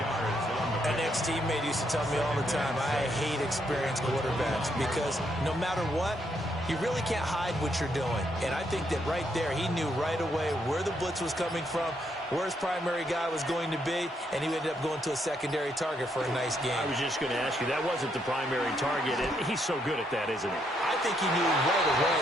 An ex-teammate used to tell me all the time, I hate experienced quarterbacks because no matter what, you really can't hide what you're doing. And I think that right there, he knew right away where the blitz was coming from, where his primary guy was going to be, and he ended up going to a secondary target for a nice game. I was just going to ask you, that wasn't the primary target, and he's so good at that, isn't he? I think he knew right away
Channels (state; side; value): normal; both; correlation 0.75